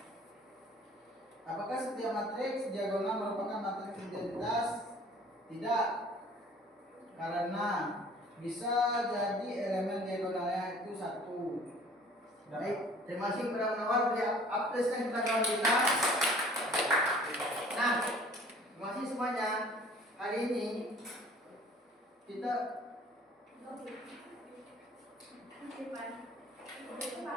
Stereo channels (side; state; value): both; normal; correlation 0.51